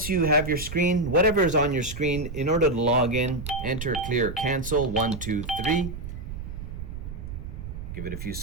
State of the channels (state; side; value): noise; right; rumble, 8 dB below the sound